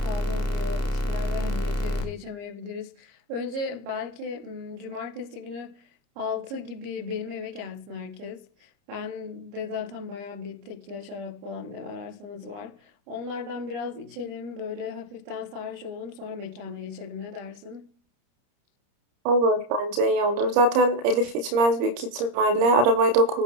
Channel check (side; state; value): left; late; 30 ms